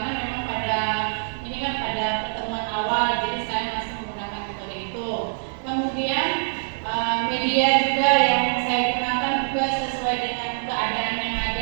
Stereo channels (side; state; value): left; silent; 62 dB below the other